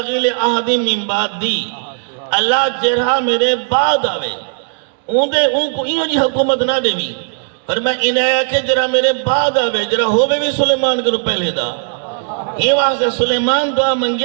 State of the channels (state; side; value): silent; left; digital silence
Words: لأحد من بعدی اللہ جرہا میرے بعد آوے ان کو انہوں جی حکومت نہ دے بھی پر میں انہیں آیا کہ جرہ میرے بعد آوے جرہ ہوئے بھی سلیمان کرو پہلے دا ہی واسطے سلیمان دعا